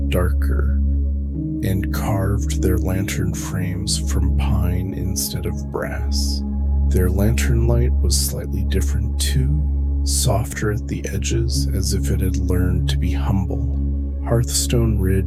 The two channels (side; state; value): both; identical; correlation 1.00